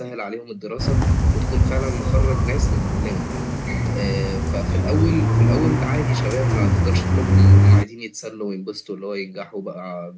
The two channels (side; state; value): both; identical; correlation 1.00